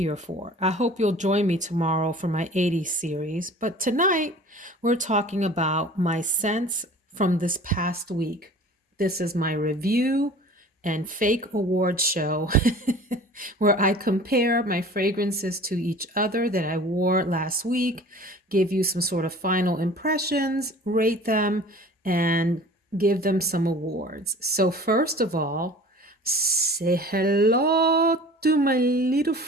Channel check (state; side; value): normal; both; correlation 0.44